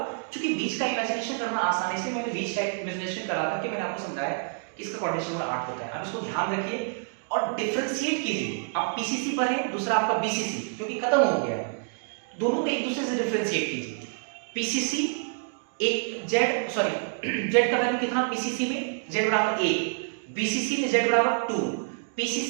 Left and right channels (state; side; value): silent; left; 60 dB below the other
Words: क्योंकि बीच का इमेजिनेशन करना आसान है, इसलिए मैंने बीच का इमेजिनेशन करा करके मैंने आपको समझाया कि इसका कोऑर्डिनेशन नंबर 8 होता है। अब इसको ध्यान रखिए और डिफरेंशिएट कीजिए। आप पीसीसी पर है, दूसरा आपका बीसीसी, क्योंकि खत्म हो गया है, दोनों को एक दूसरे से डिफरेंशिएट कीजिए। पीसीसी एक जेड, सॉरी जेड का वैल्यू कितना पीसीसी में? जेड बराबर 1, बीसीसी में जेड बराबर 2,